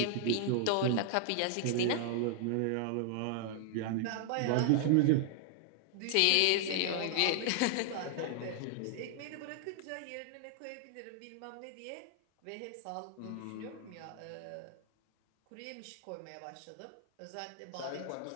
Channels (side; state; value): both; different; correlation 0.00